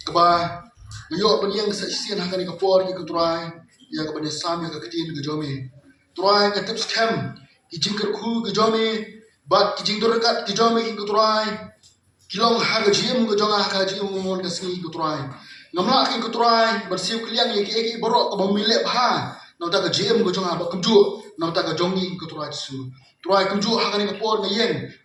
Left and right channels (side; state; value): both; identical; correlation 1.00